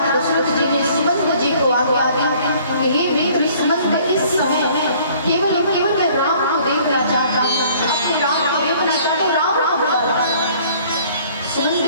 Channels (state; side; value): inverted; both; correlation -0.56